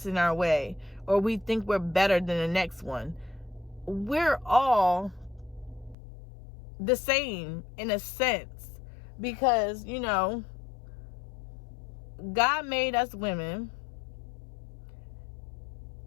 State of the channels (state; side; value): drops out; right; at 6.0 s